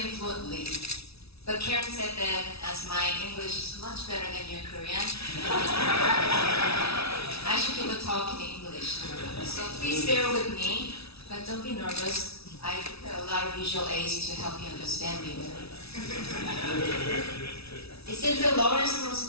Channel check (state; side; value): late; right; 0.77 ms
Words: fluently, but Karen said that as my English is much better than your Korean, I should give a talk in English. So please bear with me, but don't be nervous. I prepare a lot of visual aids to help you understand me better. It seems that Lawrence